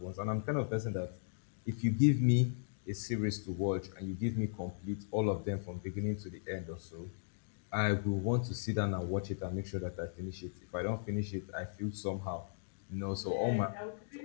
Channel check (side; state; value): right; silent; digital silence